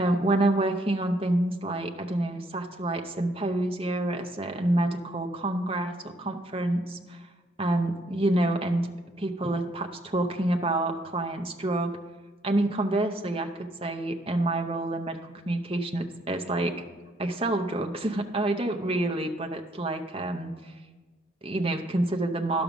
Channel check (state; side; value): normal; both; correlation 0.69